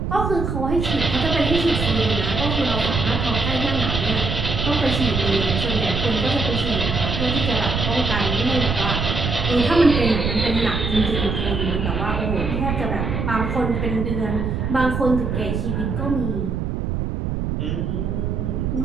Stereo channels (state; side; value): noise; right; rumble, 2 dB below the sound